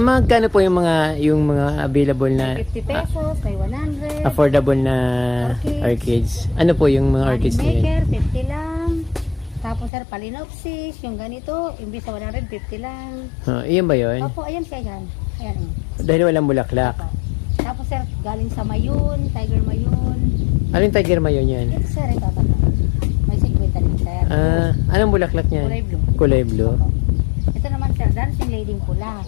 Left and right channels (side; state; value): right; drops out; at 9.9 s